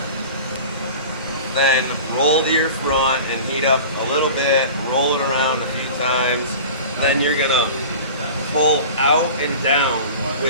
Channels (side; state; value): both; inverted; correlation -0.37